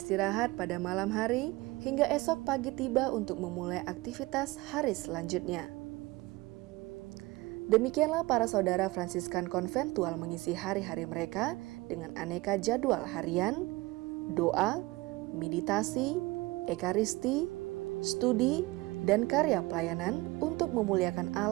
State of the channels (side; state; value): left; quieter; 21.6 dB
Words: pada malam hari hingga esok pagi tiba untuk memulai aktivitas hari selanjutnya. Demikianlah para saudara Fransiskan konventual mengisi hari-hari mereka dengan aneka jadwal harian, doa, meditasi, ekaristi, studi, dan karya pelayanan untuk memuliakan